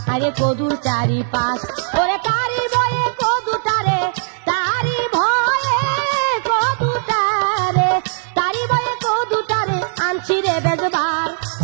আরে কদুর চারিপাশ। ওরে তারি ভয়ে কদুটারে, তারি ভয়ে কদুটারে, তারি ভয়ে কদুটারে আনছি রে বেজবার।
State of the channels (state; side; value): silent; left; 67 dB below the other